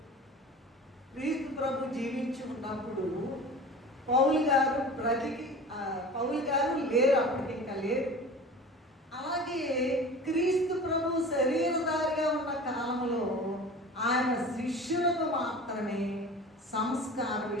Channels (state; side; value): normal; both; correlation 0.38